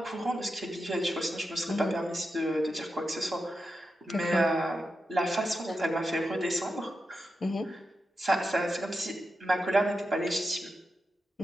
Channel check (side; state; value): both; normal; correlation 0.88